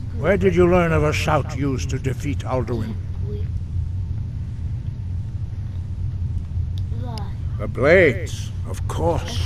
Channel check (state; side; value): identical; both; correlation 1.00